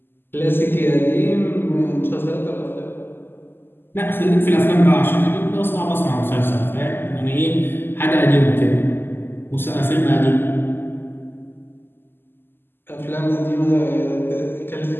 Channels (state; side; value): late; right; 0.099 ms